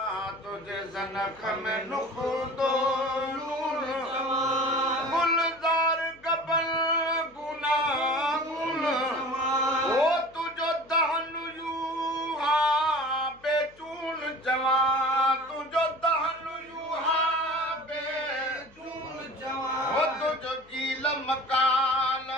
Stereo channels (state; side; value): noise; left; hum, 28 dB below the sound